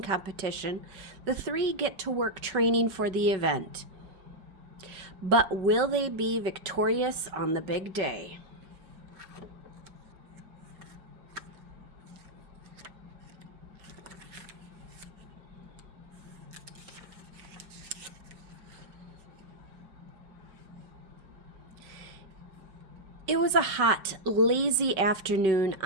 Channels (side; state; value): left; late; 5.3 ms